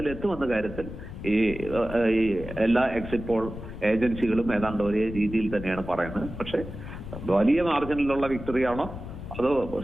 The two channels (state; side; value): noise; left; rumble, 11 dB below the sound